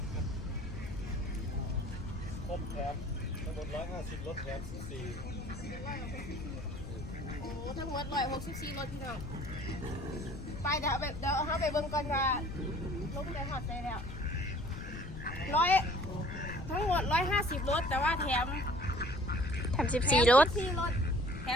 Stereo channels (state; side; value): noise; left; rumble, 9 dB below the sound